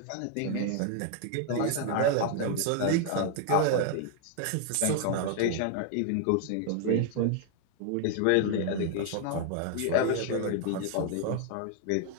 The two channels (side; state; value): both; different; correlation 0.00